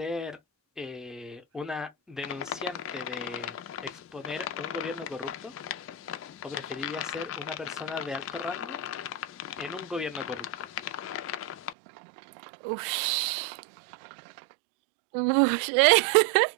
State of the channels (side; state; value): left; drops out; at 11.8 s